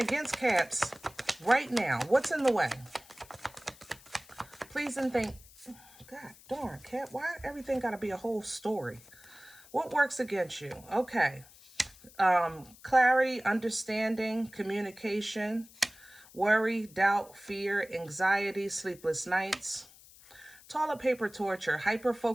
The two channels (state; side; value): noise; left; hiss, 23 dB below the sound